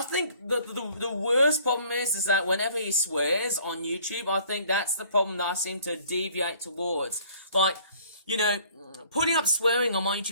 think the worst problem is that whenever he swears on YouTube, I think that's the problem that I seem to deviate towards. Like, you know, putting up swearing on my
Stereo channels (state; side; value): inverted; both; correlation -0.56